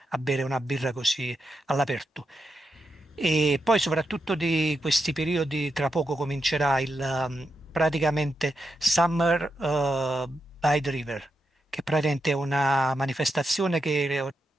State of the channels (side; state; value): both; normal; correlation 0.85